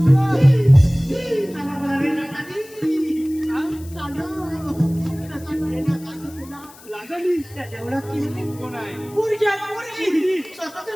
जेवढा कोण आहे? पोरगी स्वतःच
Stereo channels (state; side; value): noise; left; hiss, 22 dB below the sound